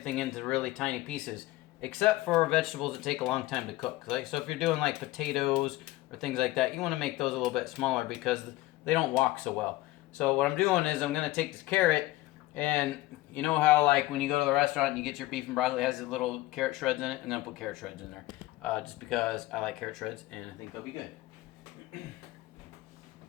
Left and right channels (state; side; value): quieter; right; 18.0 dB